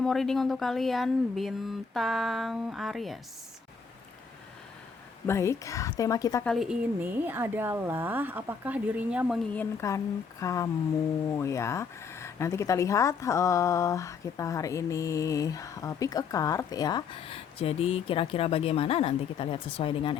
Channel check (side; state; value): right; quieter; 5.7 dB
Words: mau reading untuk kalian bintang Aries. Baik, tema kita kali ini adalah apakah dirinya menginginkan kamu ya. Nanti kita lihat kita hari ini pick a card ya. Jadi kira-kira bagaimana nanti kita lihat sesuai dengan